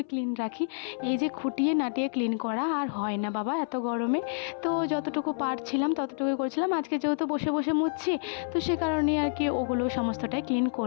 ক্লিন রাখি। এই যে খুঁটিয়ে নাটিয়ে ক্লিন করা আর হয় না বাবা এত গরমে, তো যতটুকু পারছিলাম ততটুকুই করছিলাম। আজকে যেহেতু বসে বসে মুছছি, তো সে কারণেই আর কি ওগুলো সমস্তটাই ক্লিন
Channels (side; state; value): right; silent; 59 dB below the other